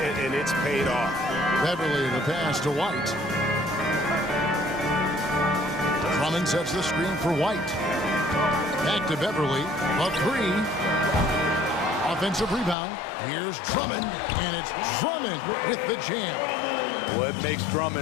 it's paid off. Beverly the pass to White. Drummond sets the screen for White. Back to Beverly. A 3. Offensive rebound. Here's Drummond, and it's Drummond with the jam. What makes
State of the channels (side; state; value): right; drops out; at 12.8 s